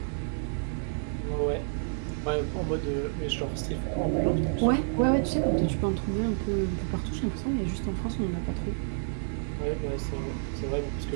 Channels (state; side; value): silent; left; digital silence